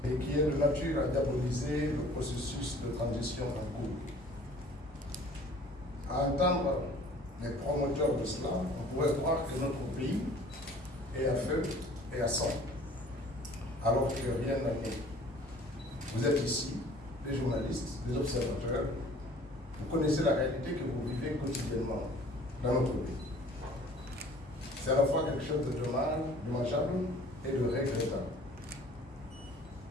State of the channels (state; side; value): normal; both; correlation 0.50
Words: et qui est de nature à diaboliser le processus de transition en cours. À entendre les promoteurs de cela, on pourrait croire que notre pays est à feu et à sang, alors que rien n'en est. Vous êtes ici, les journalistes, les observateurs, vous connaissez la réalité que vous vivez quotidiennement dans notre pays. C'est à la fois quelque chose de dommageable et de regrettable.